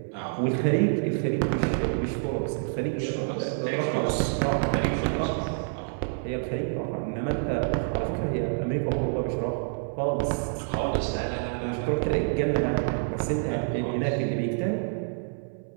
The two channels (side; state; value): left; silent; 60 dB below the other